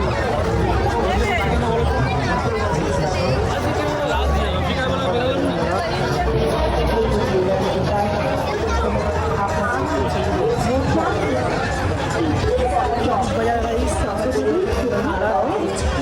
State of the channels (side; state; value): both; identical; correlation 1.00